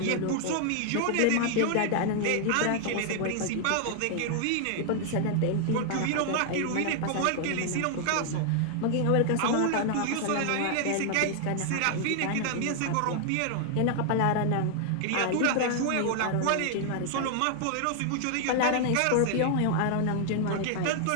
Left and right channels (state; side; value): different; both; correlation 0.00